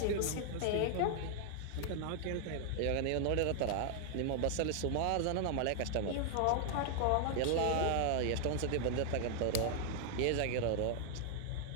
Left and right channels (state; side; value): different; both; correlation 0.00